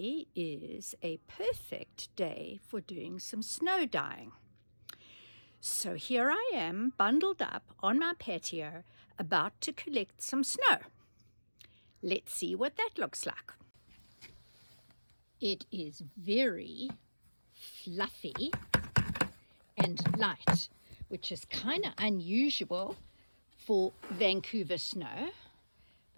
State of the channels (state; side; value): inverted; both; correlation -1.00